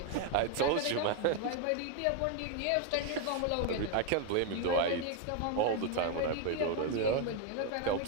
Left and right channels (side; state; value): both; different; correlation 0.01